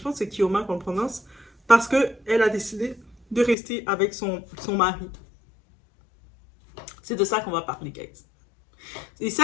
pense que c'est Kioma qu'on prononce. Parce qu'elle a décidé de rester avec son mari. C'est de ça qu'on va parler, guys. Et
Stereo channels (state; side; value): drops out; right; at 3.6 s